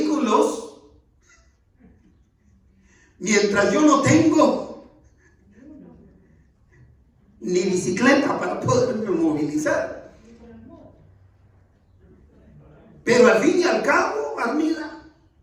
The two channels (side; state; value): both; identical; correlation 1.00